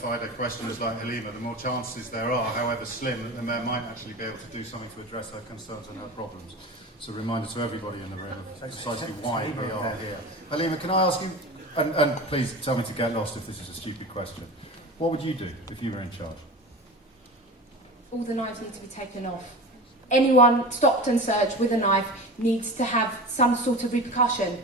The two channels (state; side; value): normal; both; correlation 0.31